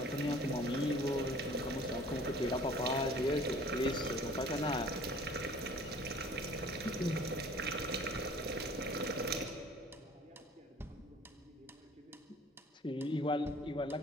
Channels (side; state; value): both; normal; correlation 0.50